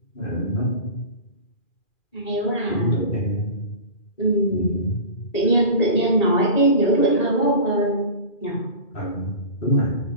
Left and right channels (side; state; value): right; late; 2.4 ms